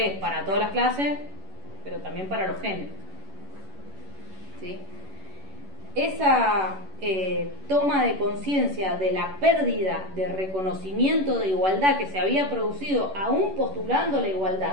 para todas las clases, pero también para los géneros, ¿sí? Esa toma de conciencia de la pérdida de reconocimiento de igualdad que se había producido aún postulando la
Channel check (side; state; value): left; late; 11 ms